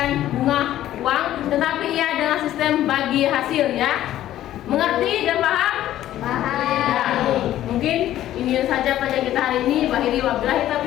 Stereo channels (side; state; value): right; quieter; 13.0 dB